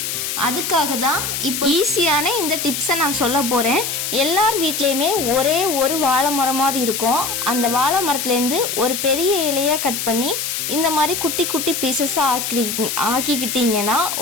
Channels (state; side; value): noise; left; hiss, 3 dB below the sound